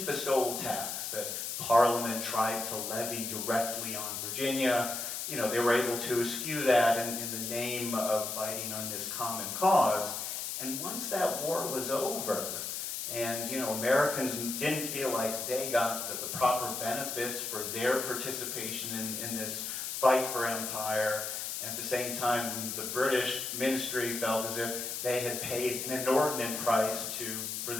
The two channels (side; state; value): left; noise; hiss, 4 dB below the sound